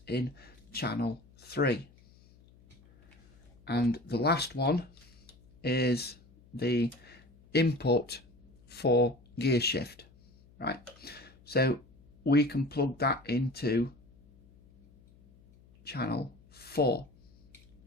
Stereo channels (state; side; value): noise; left; hum, 27 dB below the sound